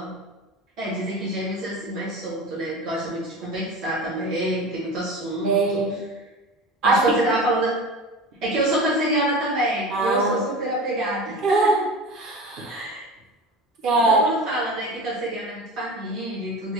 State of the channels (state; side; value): normal; both; correlation 0.32